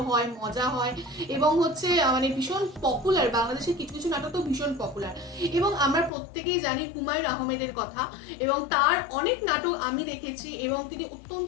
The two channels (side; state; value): right; drops out; at 6.1 s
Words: হয়, মজা হয় এবং হচ্ছে মানে ভীষণ পপুলার। বাংলাদেশের কিছু কিছু নাটক তো ভীষণ পপুলার এবং আমরা প্রত্যেকেই জানি হুমায়ুন আহমেদের কথা এবং তার অনেক নাটক আমি দেখেছি এবং তিনি